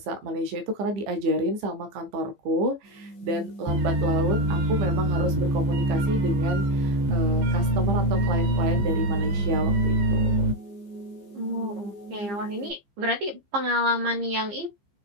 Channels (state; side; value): late; left; 15 ms